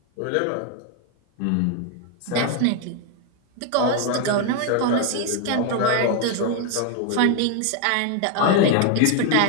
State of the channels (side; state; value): both; different; correlation 0.01